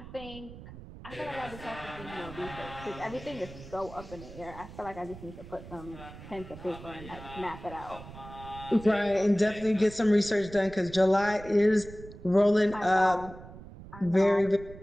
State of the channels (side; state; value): right; noise; rumble, 15 dB below the sound